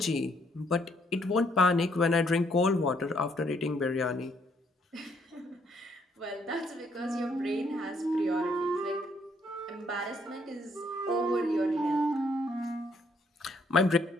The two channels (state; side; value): normal; both; correlation 0.69